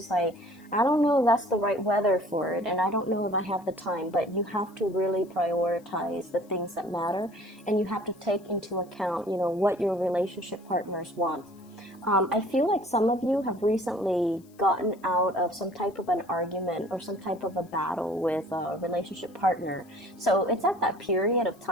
like, I don't know if that's the right weather for it, and I don't know if I have the time. But you have to really prioritize the things that matter, and you have to take into account, you know, what your relationship partners want. I feel like some of you have recently gotten out of some type of an argument or some type of a battle with a relationship partner. So it's at that period of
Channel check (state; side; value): noise; left; hiss, 30 dB below the sound